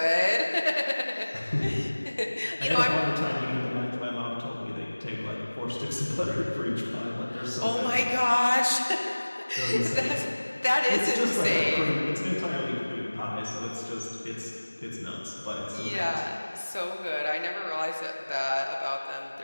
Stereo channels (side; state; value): both; inverted; correlation -1.00